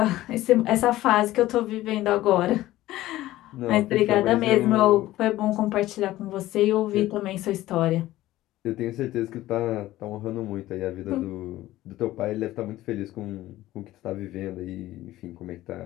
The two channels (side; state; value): right; quieter; 15.8 dB